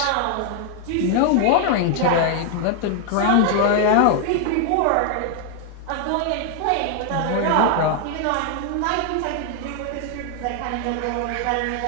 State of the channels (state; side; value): different; both; correlation 0.00